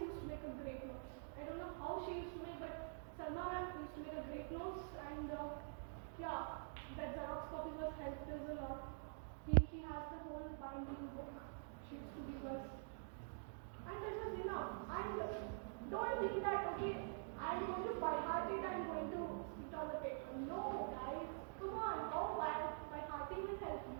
used to make a great notes. I don't know how she used to make, but Salma ma'am used to make a great notes, and yeah, that Xerox copy was helped us a lot. He has the whole binding book she used to give us. And that was enough. And don't think that, okay, I am going to by heart it, I am going to spit on the paper. No, guys, come on, how by hearting will help you.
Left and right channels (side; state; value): left; silent; digital silence